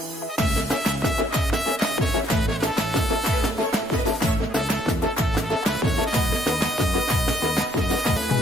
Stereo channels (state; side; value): normal; both; correlation 0.68